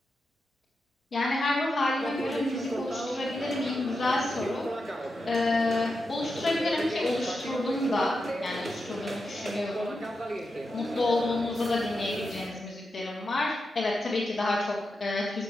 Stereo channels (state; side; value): normal; both; correlation 0.88